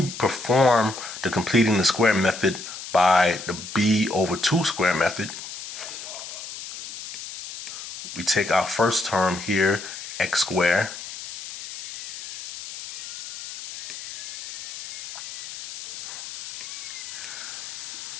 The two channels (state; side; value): noise; left; hiss, 9 dB below the sound